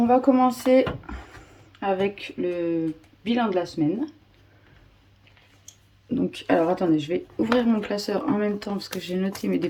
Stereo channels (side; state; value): both; identical; correlation 1.00